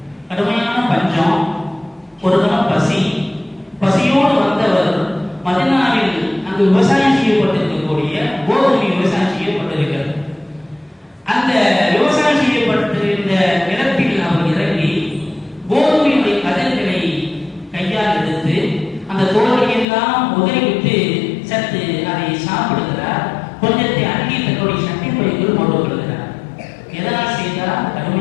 கடுமையான பஞ்சம், ஒரு தினம் பசியோடு வந்தவர் மதீனாவில் அங்கு விவசாயம் செய்யப்பட்டிருக்கக்கூடிய கோதுமை விவசாயம் செய்யப்பட்டிருக்கிறது. அந்த விவசாயம் செய்யப்பட்டிருந்த நிலத்தில் அவர் இறங்கி கோதுமையுடைய கதிர்களை கையால் எடுத்து அந்த தோலை எல்லாம் உதறிவிட்டு சற்று அதை சாப்பிடுகிறார். கொஞ்சத்தை அள்ளி தன்னுடைய சட்டை பைக்குள் போட்டுக் கொள்கிறார். எதனால் செய்தார்?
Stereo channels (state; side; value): drops out; right; at 19.9 s